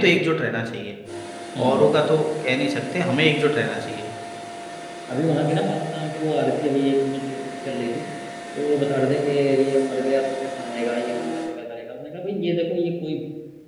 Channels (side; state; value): both; identical; correlation 1.00